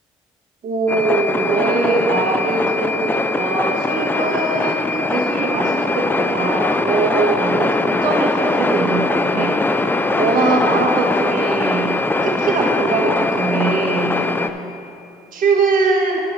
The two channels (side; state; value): both; normal; correlation 0.59